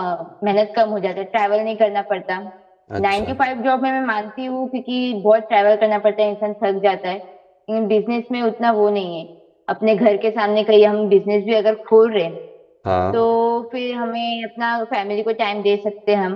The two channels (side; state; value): both; identical; correlation 1.00